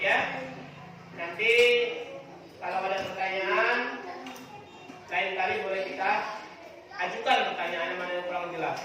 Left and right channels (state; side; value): identical; both; correlation 1.00